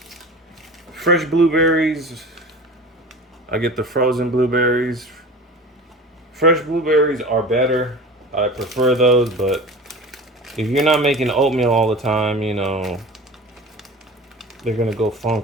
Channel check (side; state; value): both; normal; correlation 0.36